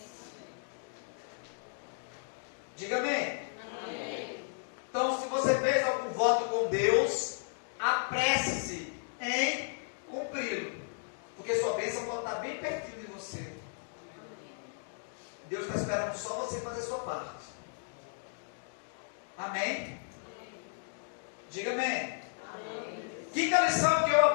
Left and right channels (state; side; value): silent; right; digital silence